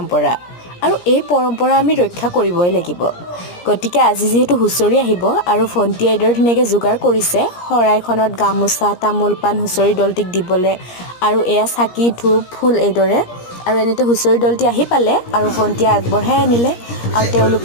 আৰু এই পৰম্পৰা আমি ৰক্ষা কৰিবই লাগিব। গতিকে আজি যিহেতু হুঁচৰি আহিব আৰু ভণ্টিয়ে এইদৰে ধুনীয়াকৈ যোগাৰ কৰিছে শৰাইখনত গামোচা তামোল পাণ হুঁচৰি দলটিক দিবলৈ আৰু এয়া চাকি ধূপ ফুল এইদৰে আৰু এনেতে হুঁচৰি দলটি আহি পালে আৰু ভণ্টিয়ে আগবঢ়াই আনিলে আৰু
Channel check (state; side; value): late; right; 17 ms